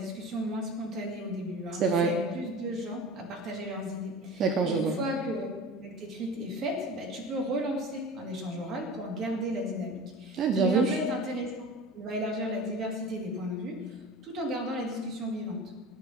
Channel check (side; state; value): both; normal; correlation 0.36